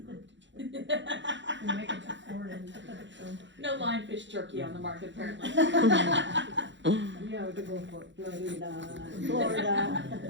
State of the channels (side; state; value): left; late; 0.53 ms